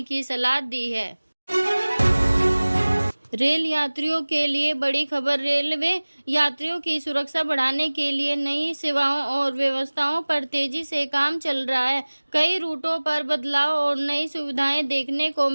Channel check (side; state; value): both; inverted; correlation -1.00